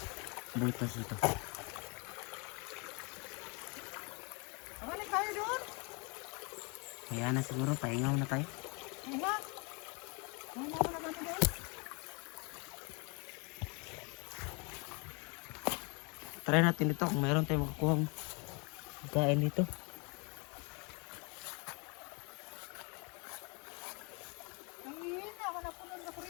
Butas ito. Balik tayo doon. Kaya na siguro, pahingaw na tayo. Ay nga. Ay nga na gano'n doon. Try natin dito kung mayroon tayong makakuhang pagkain dito. Ang hihina, ako na puno ng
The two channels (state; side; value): quieter; right; 32.0 dB